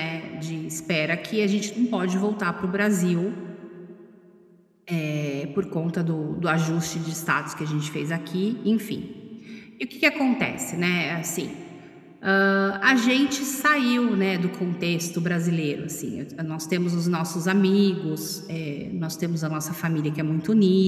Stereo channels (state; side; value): identical; both; correlation 1.00